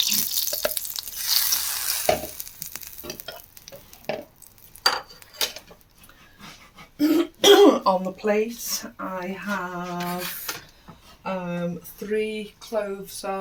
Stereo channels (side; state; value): both; identical; correlation 1.00